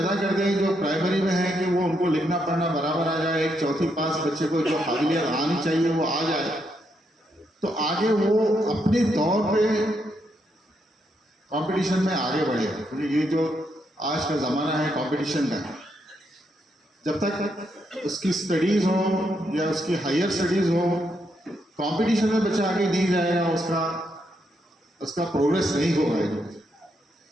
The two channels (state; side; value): normal; both; correlation 0.79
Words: कर दें जो प्राइमरी में है कि वो उनको लिखना पढ़ना बराबर आ जाए, एक चौथी पास बच्चे को जो काबिलियत आनी चाहिए वो आ जाए, तो आगे वो अपने तौर पे कंपटीशन में आगे बढ़े। क्योंकि ये जो आज का ज़माना है कंपटीशन का, जब तक उसकी स्टडीज़ हो या उसकी हायर स्टडीज़ हो, कंपटीशन में बच्चा आगे नहीं जाएगा, उसका प्रोग्रेस नहीं होगा।